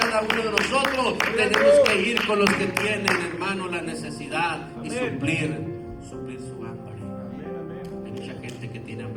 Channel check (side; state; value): both; identical; correlation 1.00